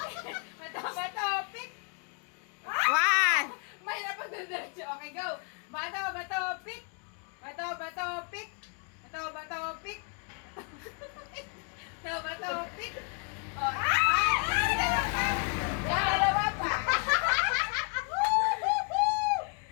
Bato, bato, pick! One. Mahirap pag diretso. Okay, go! Bato, bato, pick! Bato, bato, pick! Bato, bato, pick! Bato, bato, pick! Oh, ay! Dalawa pa!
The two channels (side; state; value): right; quieter; 36.8 dB